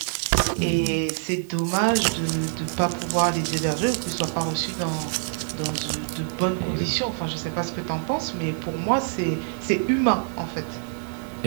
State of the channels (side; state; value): left; silent; 62 dB below the other